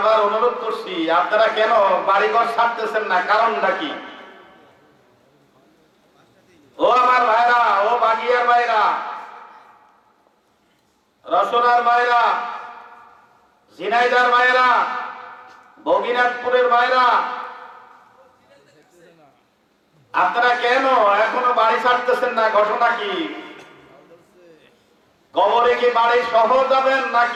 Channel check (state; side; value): identical; both; correlation 1.00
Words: অনুরোধ করছি, আপনারা কেন বাড়িঘর ছাড়তেছেন না? কারণটা কি? ও আমার ভাইরা, ও বাগিয়ার ভাইরা, রসনার ভাইরা, ঝিনাইদার ভাইরা, বগিনাথপুরের ভাইরা, আপনারা কেন এখনো বাড়ি ছাড়তেছেন না? ঘটনা কি? কবরে কি বাড়ি সহ যাবেন